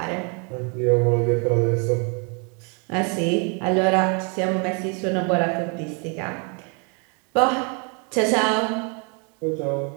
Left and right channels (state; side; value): quieter; left; 35.9 dB